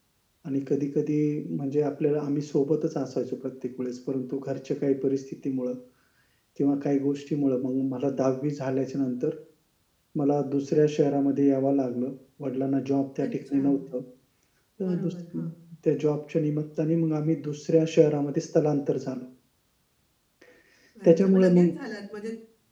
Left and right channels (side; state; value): both; identical; correlation 1.00